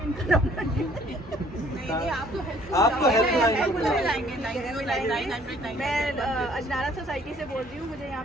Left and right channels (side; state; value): both; normal; correlation 0.59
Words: इनका नंबर नहीं, आपको आपको हेल्पलाइन मैं अजनारा सोसाइटी से बोल रही हूँ। मुझे यहाँ